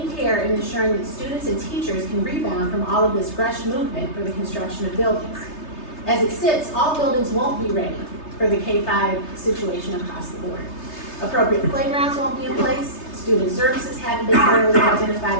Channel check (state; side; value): late; right; 3.3 ms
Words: care in ensuring that students and teachers can rebound from all of this rush movement for the construction of buildings? As it sits, all buildings won't be ready for the K-5 situation across the board. Appropriate playgrounds won't be in place, student services haven't been thoroughly identified